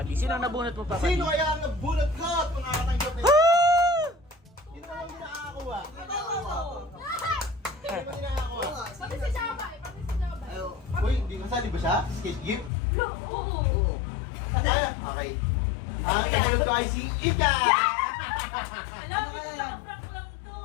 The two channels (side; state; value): right; drops out; at 12.7 s